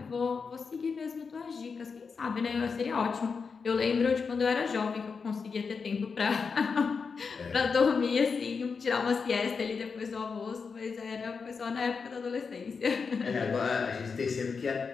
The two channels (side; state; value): right; quieter; 5.3 dB